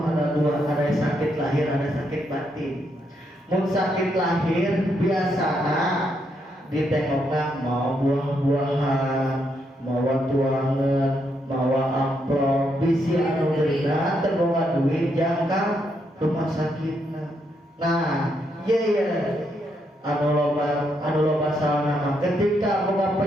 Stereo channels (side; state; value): both; normal; correlation 0.78